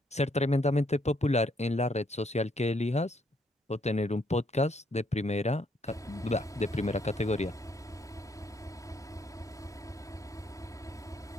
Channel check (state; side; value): normal; both; correlation 0.71